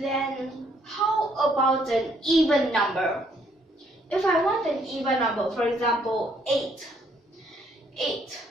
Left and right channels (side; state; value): both; normal; correlation 0.68